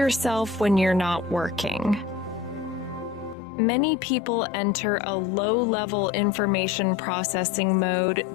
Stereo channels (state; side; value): drops out; right; at 3.4 s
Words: when you're not working. Many people enter a low-level information processing mode